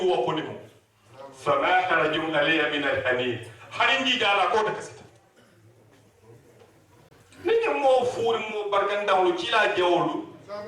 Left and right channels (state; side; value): identical; both; correlation 1.00